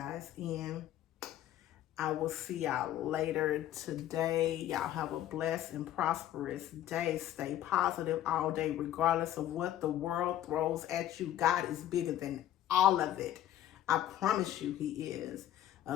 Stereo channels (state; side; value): quieter; right; 12.2 dB